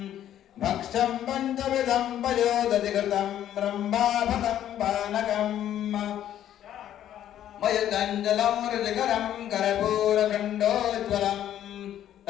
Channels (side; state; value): right; quieter; 11.3 dB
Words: भक्ष्यं पञ्चविधं पयोदधिकृतं ब्रह्माभतं पानकम् मयुतञ्जलं रुचिकरं कर्पूरखण्डोज्ज्वलं